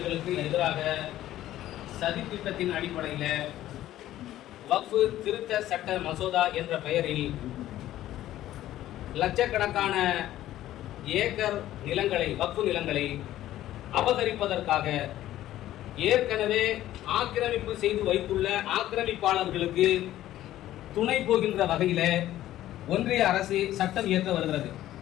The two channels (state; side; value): quieter; right; 13.7 dB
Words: எதிராக சதித்திட்டத்தின் அடிப்படையில் வக்ஃபு திருத்த சட்ட மசோதா என்ற பெயரில் லட்சக்கணக்கான ஏக்கர் நிலங்களை, வக்ஃபு நிலங்களை அபகரிப்பதற்காக ஏற்கனவே ஆக்கிரமிப்பு செய்து வைத்துள்ள ஆக்கிரமிப்பாளர்களுக்கு துணை போகின்ற வகையில் ஒன்றிய அரசு சட்டம் இயற்ற வருகிறது.